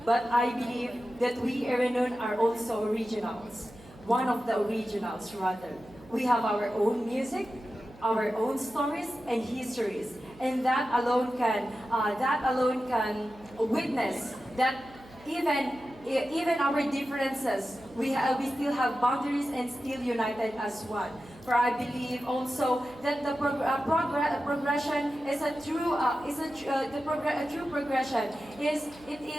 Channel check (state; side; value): noise; right; hum, 22 dB below the sound